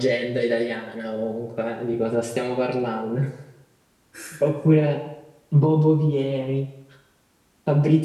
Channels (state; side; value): identical; both; correlation 1.00